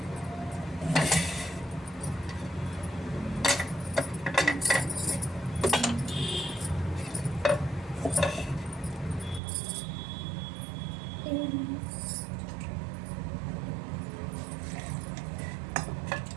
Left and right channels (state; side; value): drops out; left; at 9.4 s